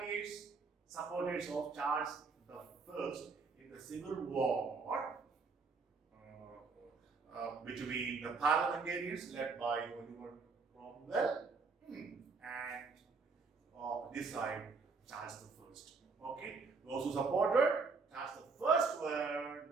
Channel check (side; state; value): left; quieter; 4.5 dB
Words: Supporters of Charles I in the Civil War between the parliamentarians led by Oliver Cromwell and this side Charles I. Okay, those who supported Charles I were